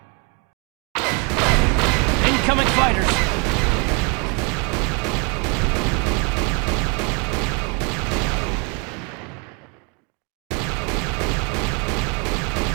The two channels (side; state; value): left; quieter; 32.4 dB